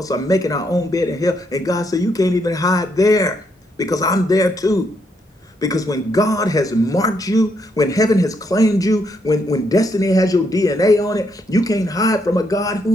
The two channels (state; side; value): normal; both; correlation 0.76